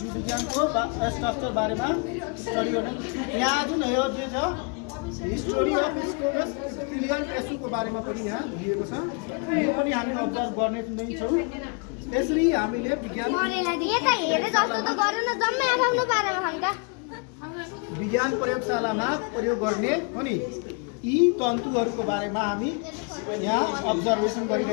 विज्ञानको स्ट्रक्चर बारेमा स्टडी गर्ने। यहाँ जुन यो जे छ हिस्टोरी अफ स्कोमस इपिथेलियल टिस्युको बारेमा पनि यहाँ दिएको छ, यो पनि हामी अब्जर्भ गर्ने नै छौँ। यसरी हामीले विज्ञान प्रयोगशालामा प्रयोग गर्ने अनि यी तन्तुहरूको बारेमा हामी यहाँ अब्जर्भेसन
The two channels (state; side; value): quieter; right; 34.3 dB